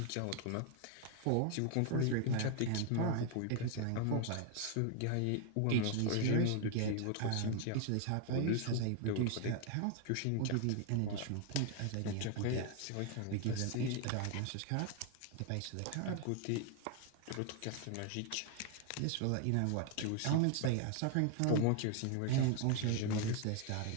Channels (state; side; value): different; both; correlation 0.01